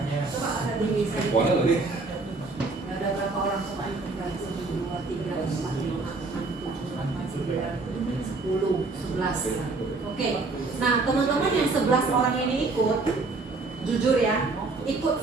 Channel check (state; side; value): quieter; left; 3.7 dB